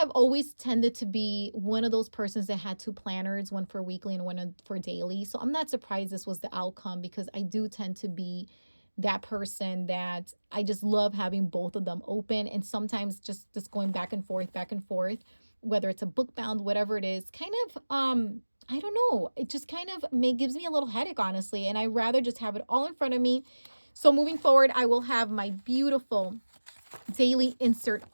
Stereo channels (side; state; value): both; inverted; correlation -1.00